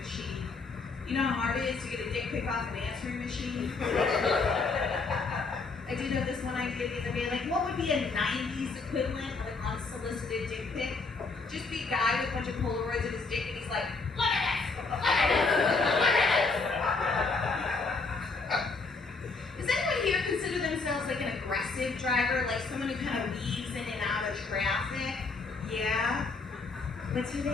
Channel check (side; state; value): right; quieter; 4.1 dB